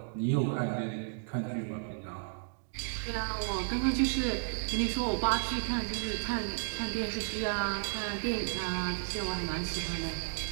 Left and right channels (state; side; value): silent; left; digital silence